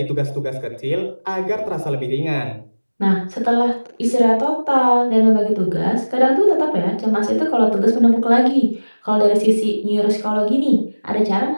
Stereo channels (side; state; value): both; inverted; correlation -1.00